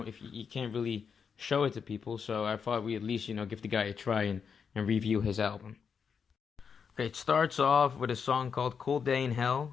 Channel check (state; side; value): quieter; right; 6.4 dB